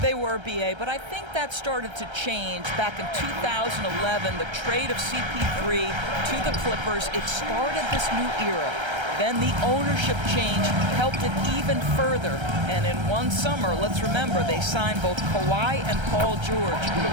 were, B.A., but I think that started to change back in 2011. The trade of CP3 to the Clippers, it started this new era. Then the ownership change helped it even further. And in one summer, let's remember, they signed both Kawhi and Paul George.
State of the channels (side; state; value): left; late; 1.3 ms